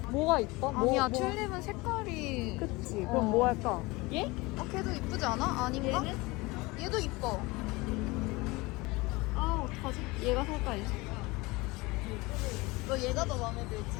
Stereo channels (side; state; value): right; quieter; 23.1 dB